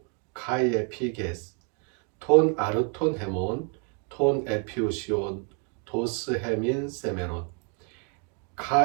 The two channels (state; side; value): quieter; left; 38.5 dB